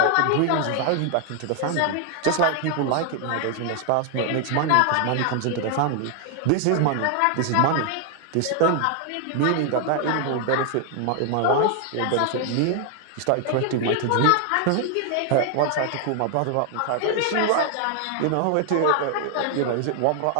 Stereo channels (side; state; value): both; different; correlation 0.00